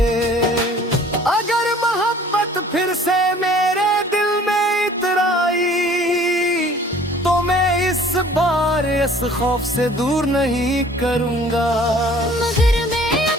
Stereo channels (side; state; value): both; normal; correlation 0.52